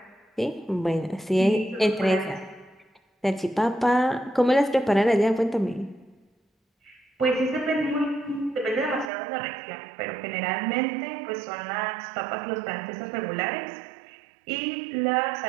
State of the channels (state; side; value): drops out; left; at 9.1 s